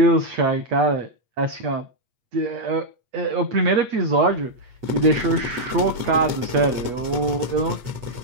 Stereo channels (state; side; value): late; left; 8.3 ms